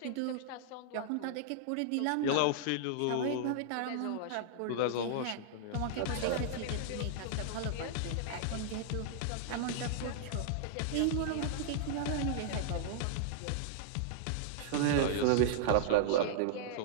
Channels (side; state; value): both; different; correlation -0.01